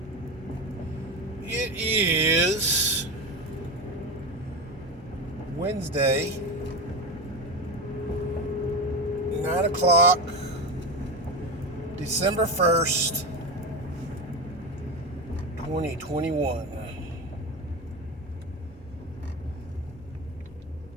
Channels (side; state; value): both; normal; correlation 0.19